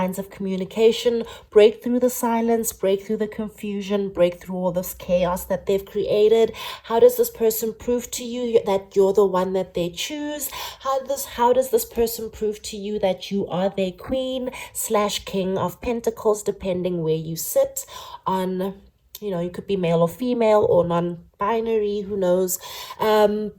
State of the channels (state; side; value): identical; both; correlation 1.00